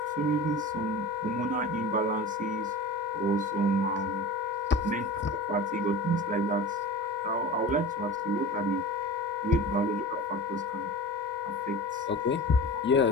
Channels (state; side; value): normal; both; correlation 0.33